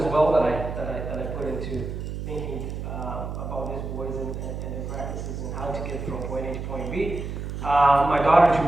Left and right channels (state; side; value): noise; right; hum, 6 dB below the sound